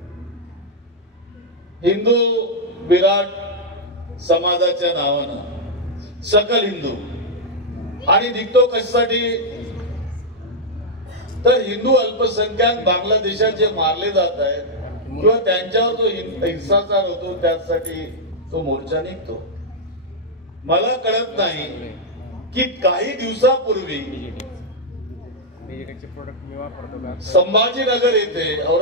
हिंदू विराट समाजाच्या नावानं, सकल हिंदू. आणि निघतो कशासाठी तर हिंदू अल्पसंख्याक बांगलादेशात जे मारले जात आहेत किंवा त्यांच्यावर जो हिंसाचार होतो त्यासाठी तो मोर्चा निघतो. मला कळत नाही की काही दिवसापूर्वी डिजिटलचे प्रोडक्ट मी वापरतो का? संभाजीनगर येथे,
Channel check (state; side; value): normal; both; correlation -0.04